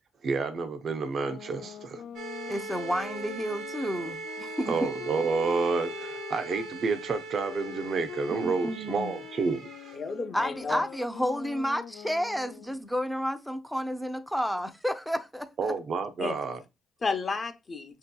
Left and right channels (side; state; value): both; normal; correlation 0.81